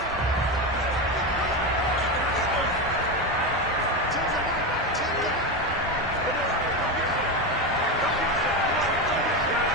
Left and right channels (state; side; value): normal; both; correlation 0.16